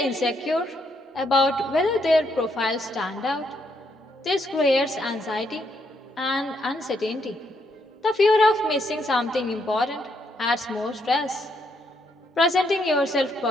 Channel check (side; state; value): both; normal; correlation 0.75